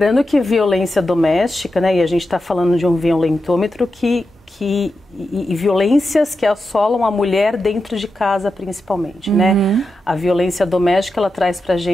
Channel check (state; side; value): normal; both; correlation 0.89